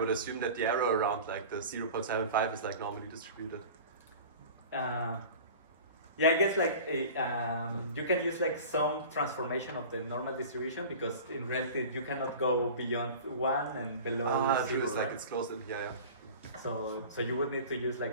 assume that the error around like the 0.75 is like normally distributed. Yeah, I guess like you can use like some transformation of the normal distribution, because in reality you cannot go beyond 1 and below 0. It's like it's closed in here, yeah. So you would need to use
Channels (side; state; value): both; inverted; correlation -0.38